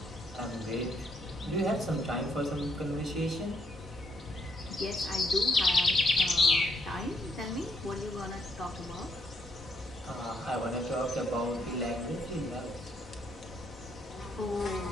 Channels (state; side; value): normal; both; correlation 0.71